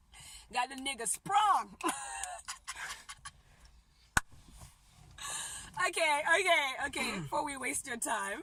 Got the nigga sprung. Okay. Before we waste your time.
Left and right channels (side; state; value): both; identical; correlation 1.00